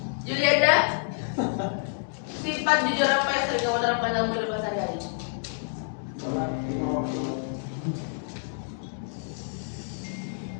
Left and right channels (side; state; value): right; silent; digital silence